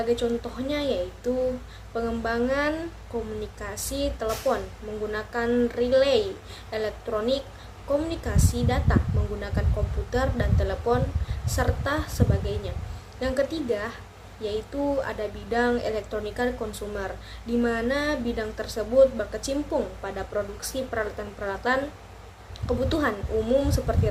contohnya yaitu pengembangan komunikasi telepon menggunakan relay elektronik, komunikasi data menggunakan komputer dan telepon, serta sebagainya. Yang ketiga yaitu ada bidang elektronika konsumer, di mana bidang tersebut berkecimpung pada produksi peralatan-peralatan kebutuhan umum seperti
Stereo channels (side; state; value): both; identical; correlation 1.00